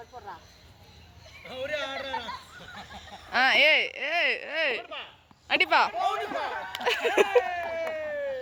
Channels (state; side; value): identical; both; correlation 1.00